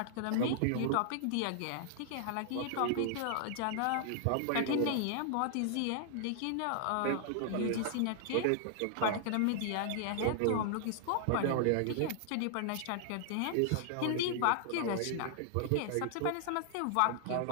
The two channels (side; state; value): both; different; correlation -0.01